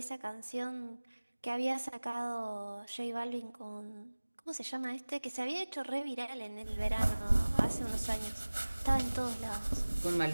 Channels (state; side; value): inverted; both; correlation -1.00